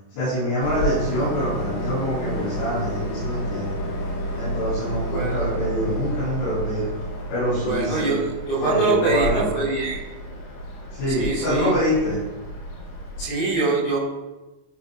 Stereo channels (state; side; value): late; right; 30 ms